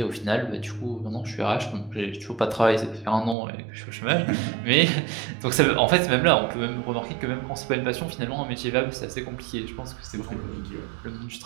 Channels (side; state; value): left; drops out; at 3.4 s